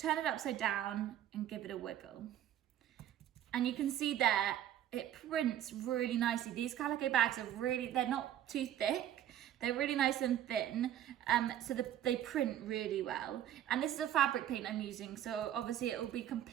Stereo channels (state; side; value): quieter; left; 11.5 dB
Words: it upside down and give it a wiggle. And you can see there, it prints really nicely. These calico bags are really, they're not too thick. They're really nice and thin, so they print really well. And this is a fabric paint I'm using, so obviously it will be